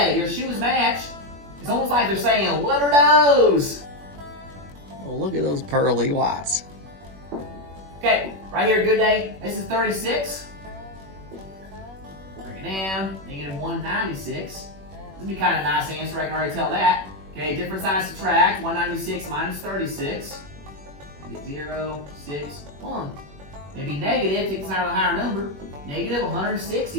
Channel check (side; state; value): left; late; 21 ms